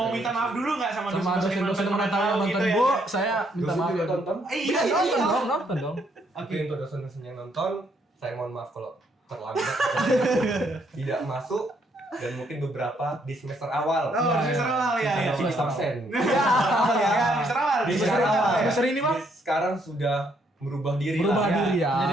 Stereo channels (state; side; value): normal; both; correlation 0.71